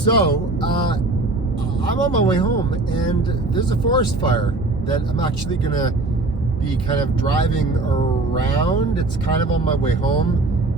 I'm on my way home, and there's a forest fire that I'm actually gonna be kind of driving around. It's kind of on my way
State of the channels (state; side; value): quieter; left; 3.1 dB